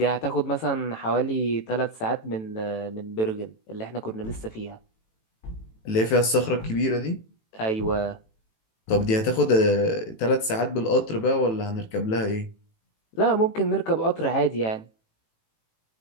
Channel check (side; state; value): right; late; 18 ms